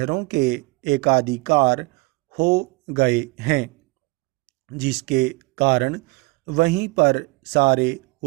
के एकाधिकार हो गए हैं, जिसके कारण वहीं पर सारे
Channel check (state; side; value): quieter; left; 25.8 dB